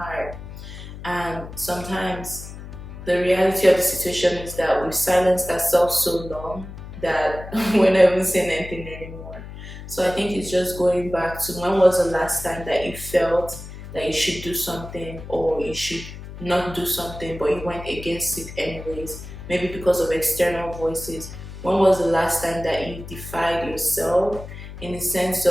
And sometimes the reality of the situation is that we've silenced ourselves so long that we're not even saying anything anymore. So I think it's just going back to when was the last time that you felt that you should do something or you should not do something, but you went against it anyways, maybe because of external voices. When was the last time that you defied yourself in the sense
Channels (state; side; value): noise; left; hum, 12 dB below the sound